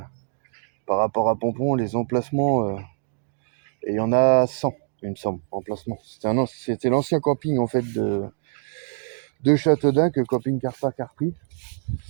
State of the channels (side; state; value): left; silent; digital silence